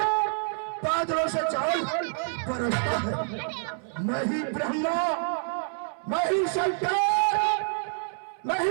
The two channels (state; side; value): silent; left; 60 dB below the other